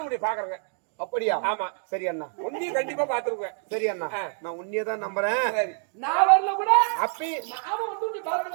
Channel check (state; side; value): silent; left; 56 dB below the other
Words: உடைய பாக்குறேங்க. அப்படியா? ஆமா. சரி அண்ணா, உன்னையும் கண்டிப்பா பாத்துருவேன். சரி அண்ணா, நான் உன்னையே தான் நம்புறேன். நான் வரல கூட அப்பி நாம வந்து நீ